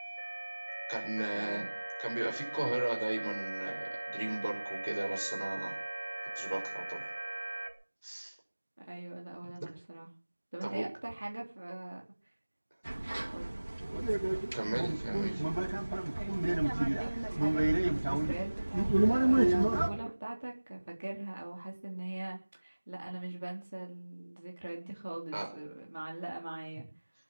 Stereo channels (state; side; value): inverted; both; correlation -1.00